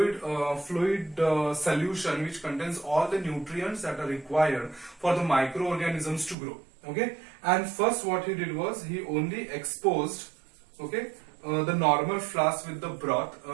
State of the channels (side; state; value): left; drops out; at 6.4 s